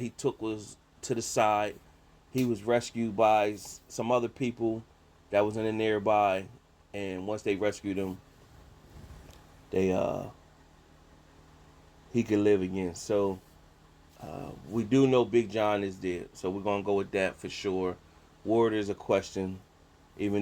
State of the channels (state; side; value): identical; both; correlation 1.00